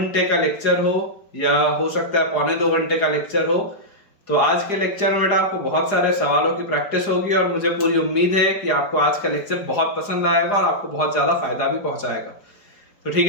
का लेक्चर हो या हो सकता है पौने 2 घंटे का लेक्चर हो। तो आज के लेक्चर में बेटा आपको बहुत सारे सवालों की प्रैक्टिस होगी और मुझे पूरी उम्मीद है कि आपको आज का लेक्चर बहुत पसंद आएगा और आपको बहुत ज्यादा फायदा भी पहुंचाएगा। तो ठीक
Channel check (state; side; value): late; right; 4.9 ms